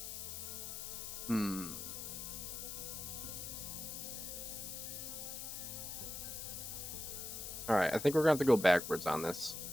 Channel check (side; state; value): left; noise; hiss, 6 dB below the sound